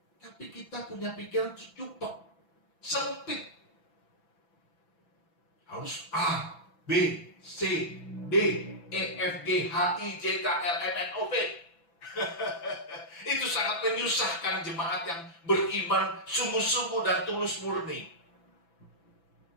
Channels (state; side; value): late; right; 6.0 ms